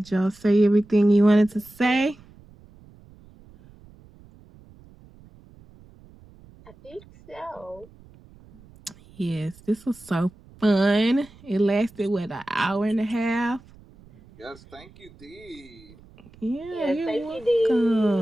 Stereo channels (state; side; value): noise; right; rumble, 24 dB below the sound